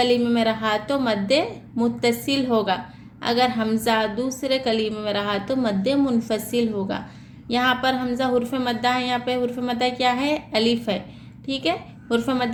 में रहा तो मद्दे मुत्तसिल होगा, अगर हमज़ा दूसरे कलीमे में रहा तो मद्दे मुनफसिल होगा। यहाँ पर हमज़ा हुर्फ मद्दा है, यहाँ पे हुर्फ मद्दा क्या है? अलिफ है, ठीक है। हुर्फ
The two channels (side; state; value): both; identical; correlation 1.00